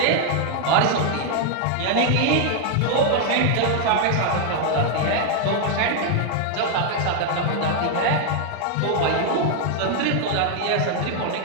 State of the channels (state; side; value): different; both; correlation 0.00